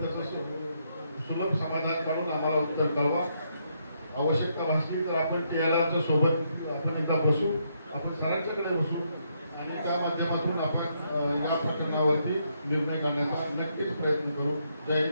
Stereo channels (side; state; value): both; inverted; correlation -0.76